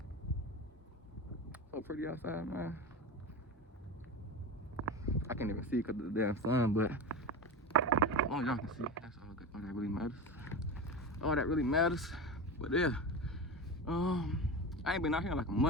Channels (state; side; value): normal; both; correlation 0.25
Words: So pretty outside, man. I can't even see because of the damn sun, but as long as y'all can see, that's all good. All that really matters. All that really matters. But yeah. I ain't been out here in like a